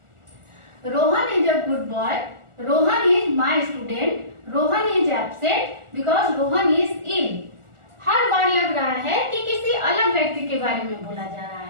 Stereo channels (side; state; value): left; late; 1.4 ms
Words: Rohan is a good boy, Rohan is my student, Rohan is absent because Rohan is ill. हर बार लग रहा है कि किसी अलग व्यक्ति के बारे में बोला जा रहा